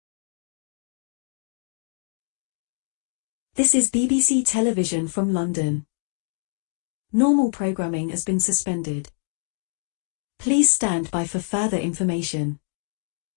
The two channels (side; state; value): right; silent; digital silence